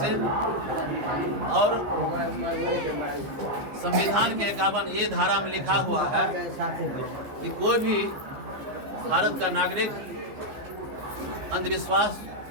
और संविधान के 51A धारा में लिखा हुआ है कि कोई भी भारत का नागरिक अंधविश्वास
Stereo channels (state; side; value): late; left; 15 ms